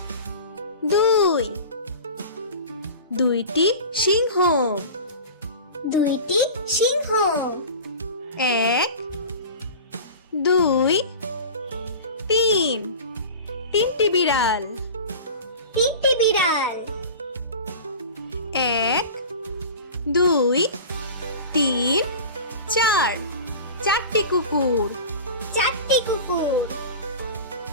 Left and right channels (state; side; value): inverted; both; correlation -0.34